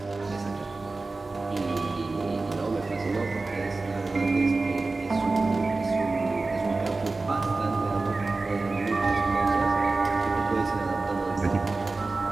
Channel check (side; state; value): left; quieter; 3.5 dB